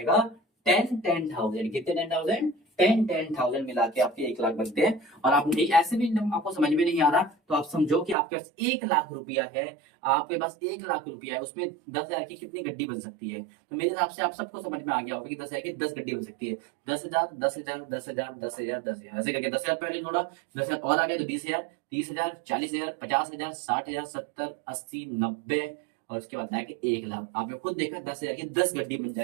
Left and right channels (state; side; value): drops out; left; at 8.2 s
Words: 10,000। कितने 10,000? 10,000 मिला के आपके 1 लाख बनते हैं। और आप नहीं, ऐसे भी आपको समझ में नहीं आ रहा तो आप समझो कि आपके पास 1 लाख रुपया है, आपके पास 1 लाख रुपया है, उसमें 10,000 की कितनी गड्डी बन सकती है। तो मेरे हिसाब से आप सबको समझ में आ गया होगा कि 10,000 की 10 गड्डी बन सकती है। 10,000 10,000 10,000 10,000 10,000 ऐसे करके 10,000 पहले जोड़ा, 10,000 और आ गए तो 20,000 30,000 40,000 50,000 60,000 70 80 90, और उसके बाद आया कि 1 लाख। आपने खुद देखा 10,000 की 10 गड्डी बन